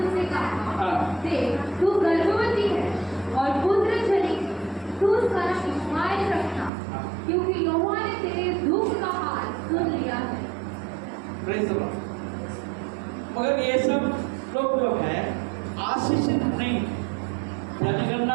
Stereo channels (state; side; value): drops out; left; at 6.7 s